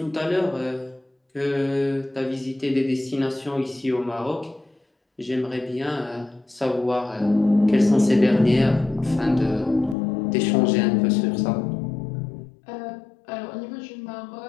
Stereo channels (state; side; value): drops out; right; at 10.0 s